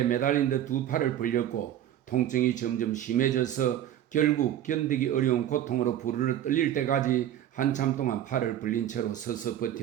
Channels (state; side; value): quieter; left; 11.4 dB